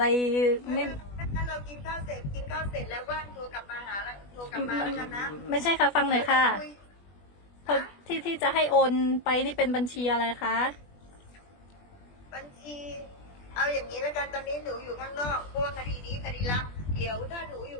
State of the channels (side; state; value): right; late; 20 ms